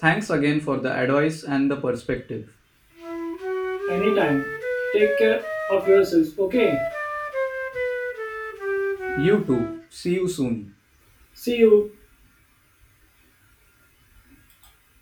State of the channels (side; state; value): both; identical; correlation 1.00